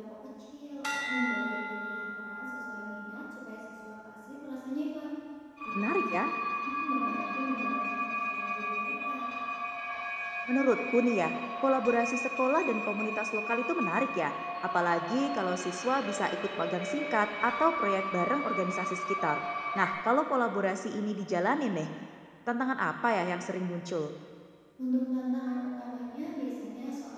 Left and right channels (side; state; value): both; identical; correlation 1.00